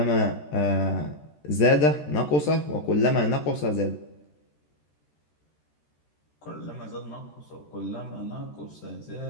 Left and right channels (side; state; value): right; late; 13 ms